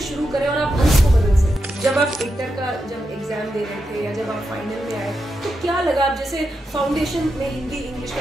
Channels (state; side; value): normal; both; correlation 0.86